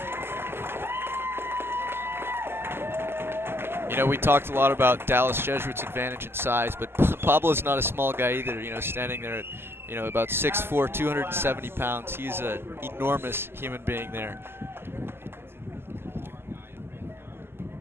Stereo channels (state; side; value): late; left; 0.11 ms